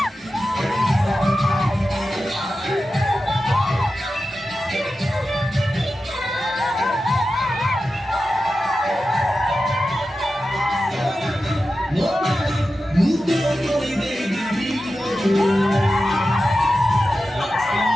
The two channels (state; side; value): normal; both; correlation 0.92